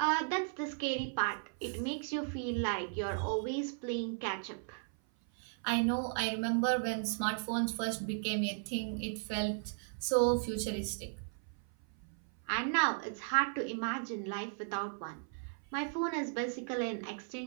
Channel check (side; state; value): left; silent; 54 dB below the other